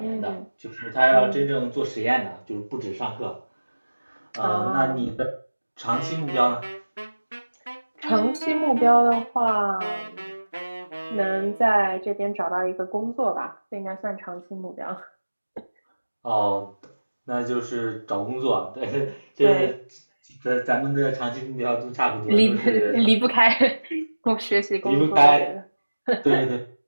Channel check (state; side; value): inverted; both; correlation -1.00